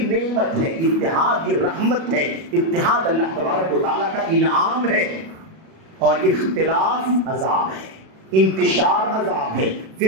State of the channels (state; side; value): late; left; 37 ms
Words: نعمت ہے، اتحاد یہ رحمت ہے، اتحاد اللہ تبارک و تعالیٰ کا انعام ہے، اور اختلاف عذاب ہے، انتشار عذاب ہے،